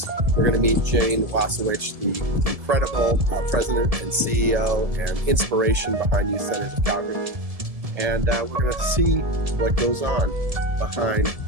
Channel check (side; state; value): left; late; 1.7 ms